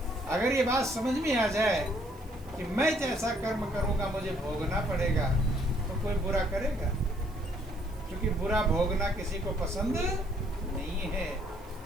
अगर ये बात समझ में आ जाए कि मैं जैसा कर्म करूंगा मुझे भोगना पड़ेगा, तो कोई बुरा करेगा? क्योंकि बुरा भोगना किसी को पसंद नहीं है।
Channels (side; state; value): right; noise; hiss, 26 dB below the sound